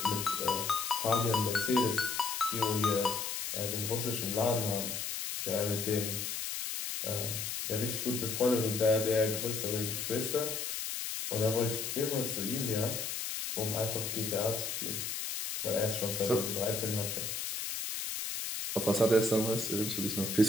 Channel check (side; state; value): left; noise; hiss, 3 dB below the sound